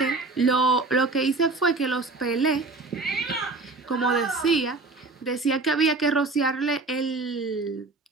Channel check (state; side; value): quieter; left; 3.6 dB